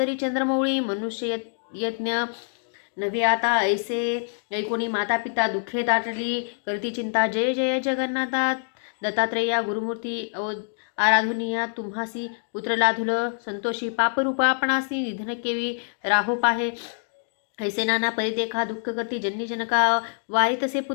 चंद्रमौळी मनुष्य यज्ञ नव्हे आता ऐसे ऐकोणी माता पिता दुःखे दाटली करती चिंता जय जय जगन्नाथा दत्तात्रेया गुरुमूर्ती आराधुनिया तुम्हासी पुत्र लाधुल संतोषी पापरूपा आपणासी निधन केवी राहो पाहे ऐसे नाना परिदेखा दुःख करती जननी जनका वारी तसे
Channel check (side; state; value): right; silent; digital silence